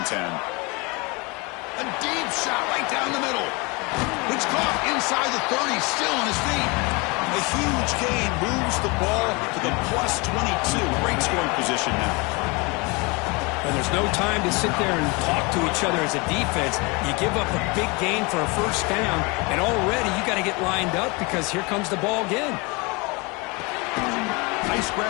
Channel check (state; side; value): quieter; right; 27.9 dB